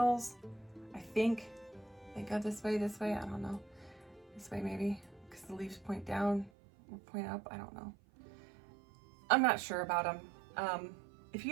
I think they go this way, I don't know. This way maybe, because the leaves point down or point up, I don't know. I'm not sure about them. If you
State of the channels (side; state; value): left; drops out; at 6.5 s